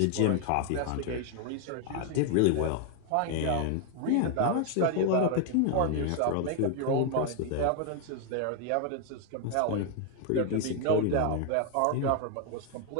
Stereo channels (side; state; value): both; different; correlation 0.00